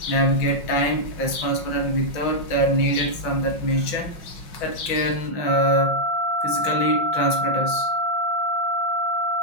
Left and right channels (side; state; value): right; late; 5.6 ms